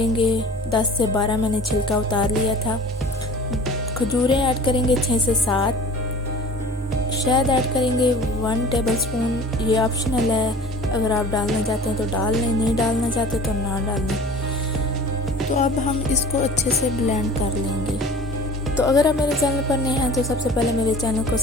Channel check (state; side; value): normal; both; correlation 0.43